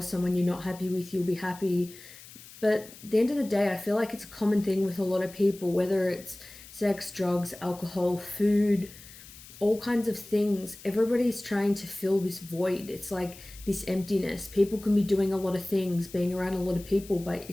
someone you're not happy with, you'll be happy. But at the end of the day, I feel like it's a common thing with a lot of people, whether it's sex, drugs, alcohol, food, all kinds of things. Everybody's trying to fill this void. It's like this emptiness. People can be doing a lot of things, being around a lot of people, but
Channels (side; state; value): left; noise; hiss, 18 dB below the sound